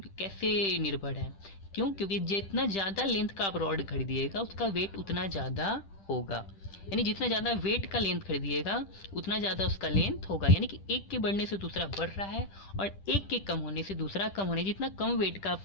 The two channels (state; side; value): late; right; 10 ms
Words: कैसे निर्भर है? क्यों? क्योंकि जितना ज़्यादा लेंथ का आप रॉड खरीदिएगा उसका वेट उतना ज़्यादा होगा। यानी जितना ज़्यादा वेट का लेंथ खरीदिएगा उतना ज़्यादा उसका लेंथ होगा। यानी कि एक के बढ़ने से दूसरा बढ़ रहा है और एक के कम होने से दूसरा कम होने। जितना कम वेट का